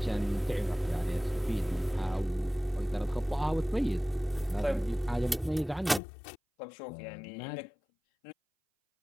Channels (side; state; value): right; drops out; at 6.0 s